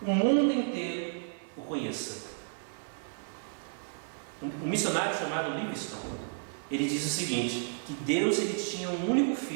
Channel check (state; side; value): silent; left; 56 dB below the other